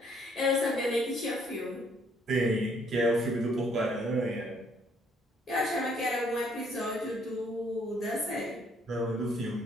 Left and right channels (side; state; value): both; normal; correlation 0.65